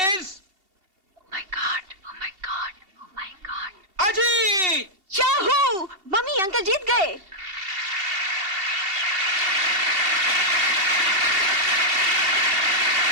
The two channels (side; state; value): left; late; 2.7 ms